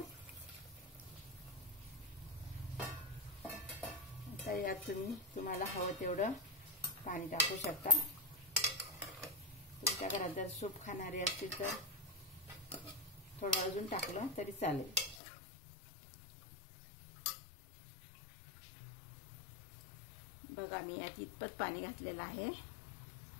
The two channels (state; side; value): drops out; right; at 15.2 s